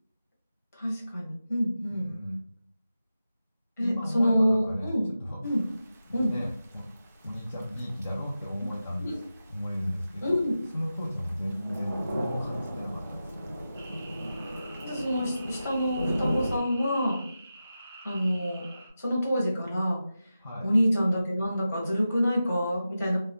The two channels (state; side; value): inverted; both; correlation -0.92